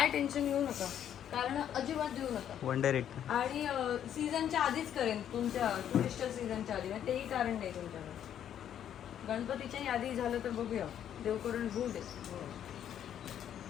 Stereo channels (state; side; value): quieter; right; 9.9 dB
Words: टेन्शन घेऊ नका, कारण अजिबात देऊ नका. आणि सीझनच्या आधीच करेन, तुमच्या टुरिस्ट सीझनच्या आधी. तेही कारण नाही तुमच्याकडे. गणपतीच्याही आधी झालं तर बघूया, देव करून होऊ दे.